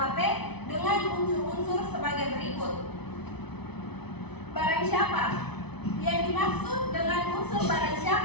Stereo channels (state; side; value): late; right; 0.99 ms